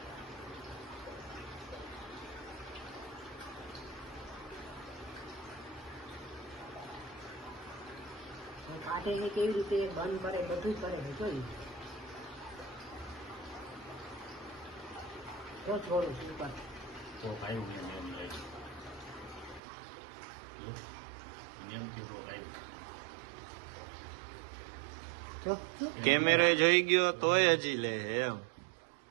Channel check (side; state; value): left; drops out; at 19.6 s